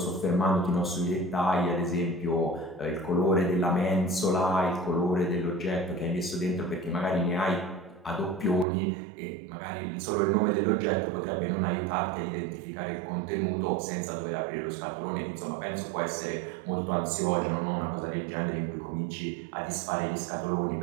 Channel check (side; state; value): left; drops out; at 8.7 s